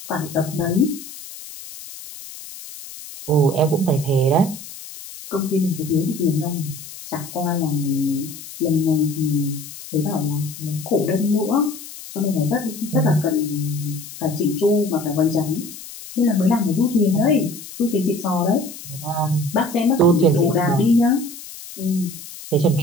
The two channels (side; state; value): left; noise; hiss, 14 dB below the sound